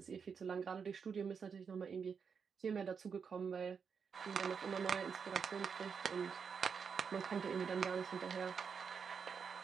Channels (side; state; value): left; quieter; 6.2 dB